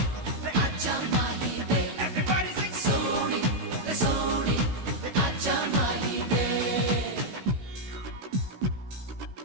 रे आजा माही वे everybody sing सोनी रे सोनी रे आजा माही वे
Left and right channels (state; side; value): late; left; 16 ms